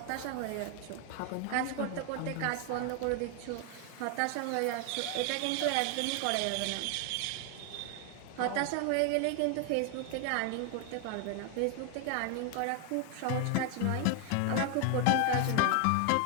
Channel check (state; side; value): different; both; correlation 0.00